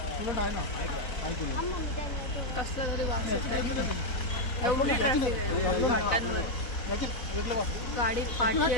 तुला नाही ना काय केलं. कसला तरी वास येतोय. एवढी ट्रॅफिक आहे घाटांवर. गाडी पाठी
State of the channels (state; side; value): late; right; 4.1 ms